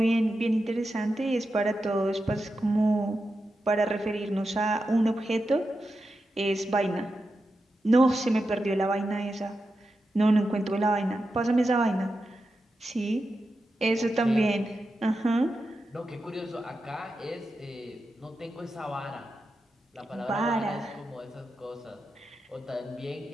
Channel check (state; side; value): normal; both; correlation 0.89